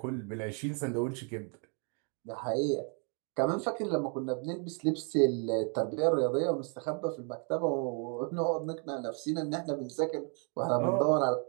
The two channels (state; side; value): quieter; left; 39.0 dB